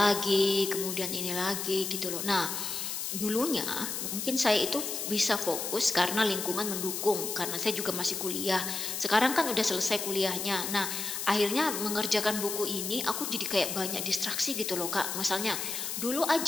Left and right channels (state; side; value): noise; left; hiss, 4 dB below the sound